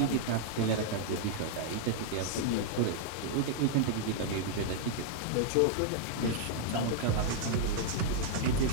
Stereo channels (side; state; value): both; different; correlation -0.01